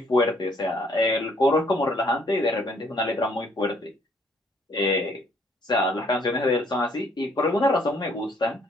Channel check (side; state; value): both; normal; correlation 0.65